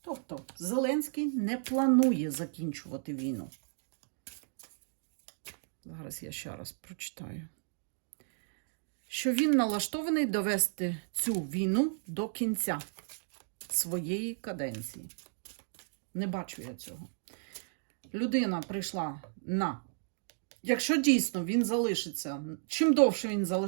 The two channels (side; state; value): left; silent; digital silence